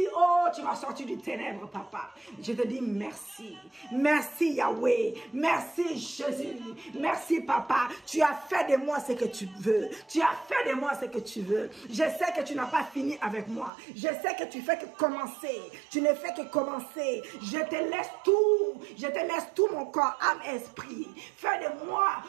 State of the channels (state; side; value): drops out; left; at 13.7 s